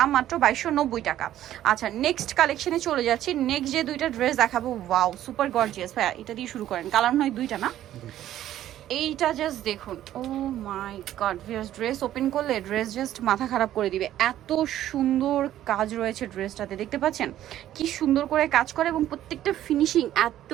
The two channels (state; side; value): quieter; left; 12.5 dB